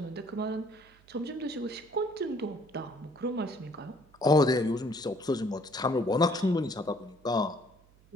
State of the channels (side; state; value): right; noise; hum, 28 dB below the sound